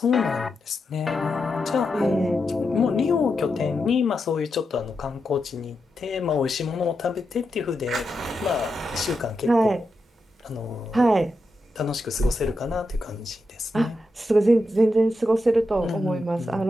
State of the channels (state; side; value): normal; both; correlation 0.86